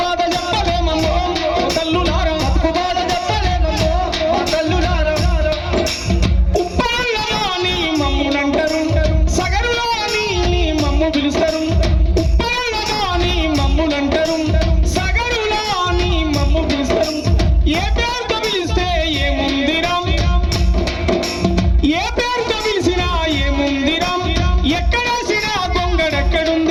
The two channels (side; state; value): both; identical; correlation 1.00